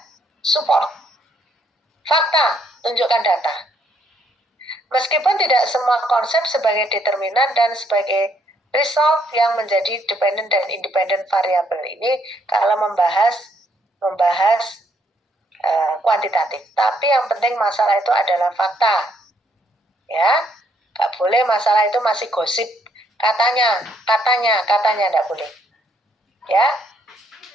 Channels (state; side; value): normal; both; correlation 0.70